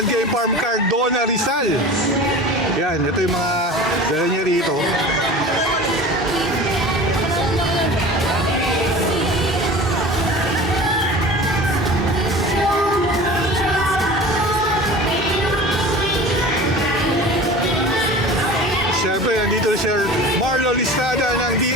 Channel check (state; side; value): normal; both; correlation 0.37